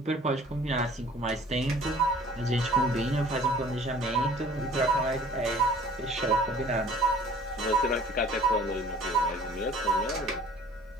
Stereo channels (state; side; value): normal; both; correlation 0.51